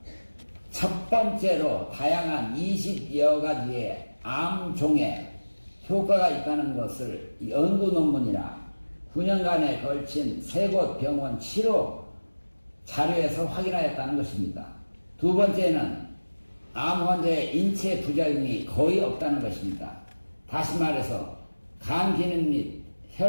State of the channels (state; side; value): inverted; both; correlation -1.00